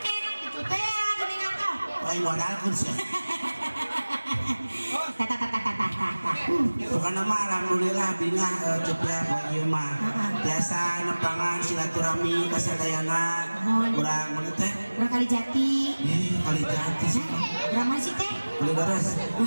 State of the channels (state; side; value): inverted; both; correlation -1.00